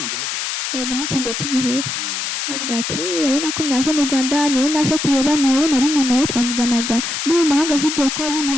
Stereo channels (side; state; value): left; noise; hiss, 3 dB below the sound